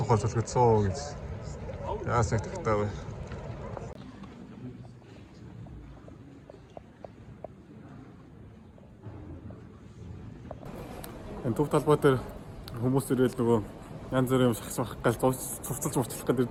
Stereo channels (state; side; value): identical; both; correlation 1.00